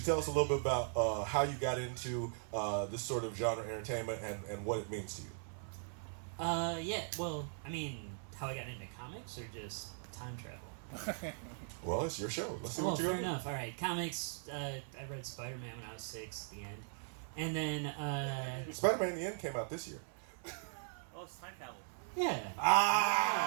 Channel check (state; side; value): silent; left; 51 dB below the other